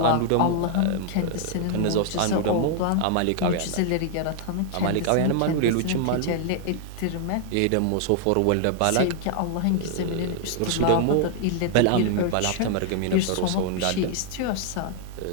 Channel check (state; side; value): different; both; correlation 0.00